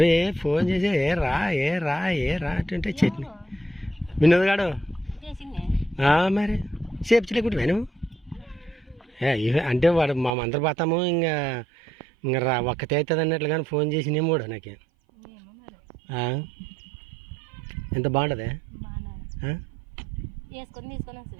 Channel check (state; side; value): drops out; left; at 10.3 s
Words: ఫోన్ చేసి ఏ రా అంటే చట్నీ వినోద్ గాడు మరి చేపించలేకుంటే నువ్వు అంటే వాడు మా అందరు పోతాము ఇంకా రా ఒక్కతే అవుతుంది అన్నట్లు కానీ ఫోన్ చేసినేమో కూడా నాకే. ఎంత బాగుంటుంది